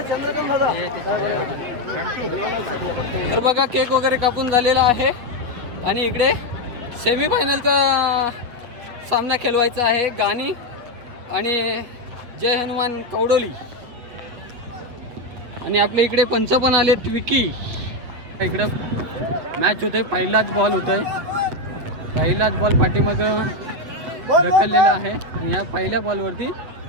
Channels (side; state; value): left; late; 8.0 ms